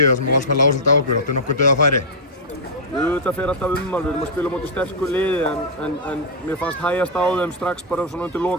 þar sem Valsmenn lágu svolítið á okkur. Áttu nokkuð dauðafæri? Þetta fer alltaf við erum að spila á móti sterku liði en mér fannst hægjast á þeim strax bara svona undir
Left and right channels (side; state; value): both; normal; correlation -0.07